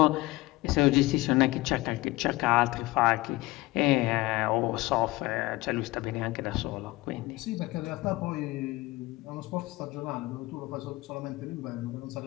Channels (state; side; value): quieter; right; 20.0 dB